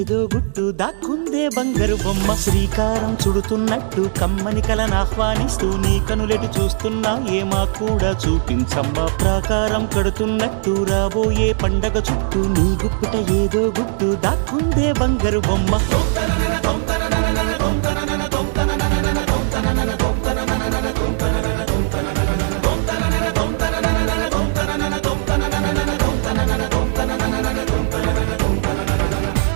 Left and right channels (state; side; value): silent; left; digital silence